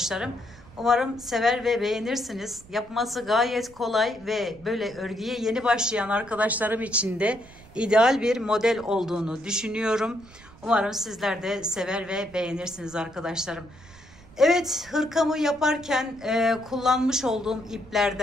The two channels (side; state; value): right; noise; rumble, 23 dB below the sound